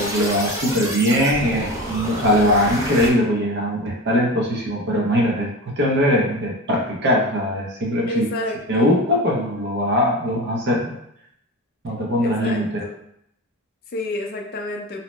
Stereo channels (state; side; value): normal; both; correlation 0.29